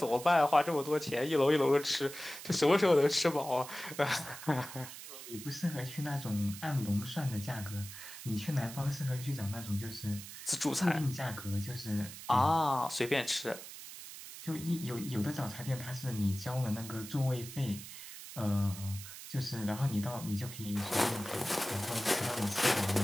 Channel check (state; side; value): noise; right; hiss, 12 dB below the sound